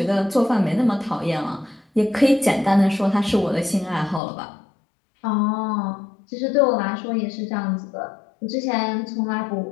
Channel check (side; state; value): right; drops out; at 4.2 s